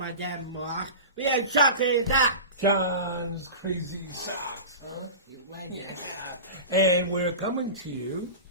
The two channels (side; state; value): both; inverted; correlation -0.31